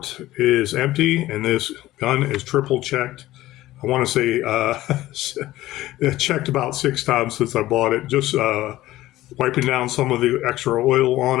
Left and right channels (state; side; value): quieter; right; 16.0 dB